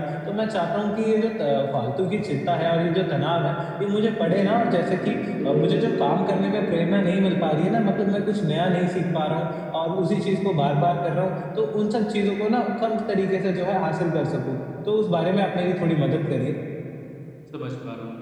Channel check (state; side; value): identical; both; correlation 1.00